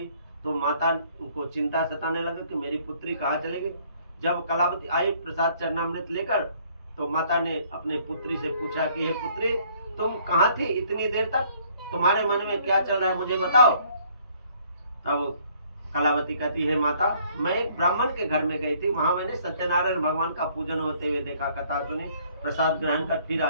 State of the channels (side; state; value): both; inverted; correlation -0.61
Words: तो माता को चिंता सताने लगा कि मेरी पुत्री कहाँ चलेगी। जब कलावती आई प्रसाद चरणामृत लेकर, तो माता ने अपने पुत्री से पूछा कि हे पुत्री, तुम कहाँ थी इतनी देर तक, तुम्हारे मन में क्या चल रहा है मुझे बताओ। तब कलावती कहती है माता, मैं एक ब्राह्मण के घर में गई थी, वहां मैंने सत्यनारायण भगवान का पूजन होते हुए देखा, कथा सुनी, प्रसाद ग्रहण कर फिर